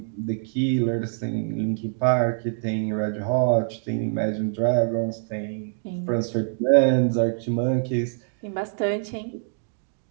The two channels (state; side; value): silent; left; 62 dB below the other